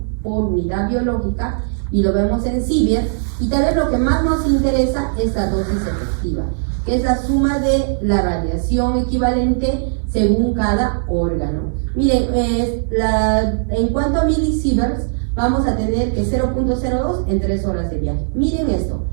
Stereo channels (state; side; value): silent; left; digital silence